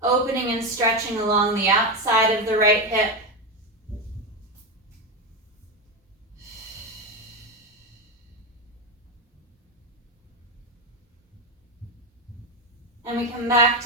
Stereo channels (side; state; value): both; normal; correlation 0.12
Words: opening and stretching along the outside of the right hip. And we come back